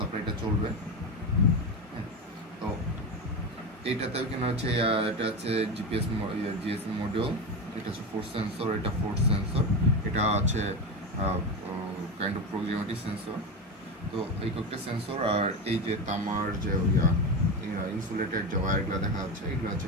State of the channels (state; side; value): normal; both; correlation 0.19